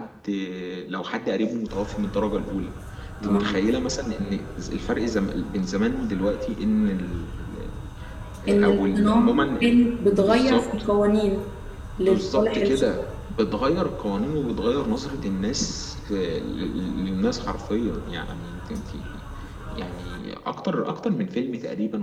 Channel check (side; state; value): both; identical; correlation 1.00